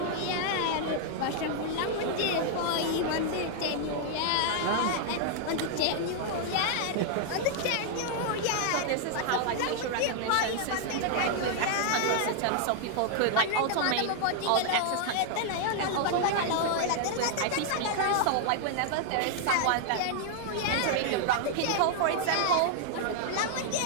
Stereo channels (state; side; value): different; both; correlation 0.00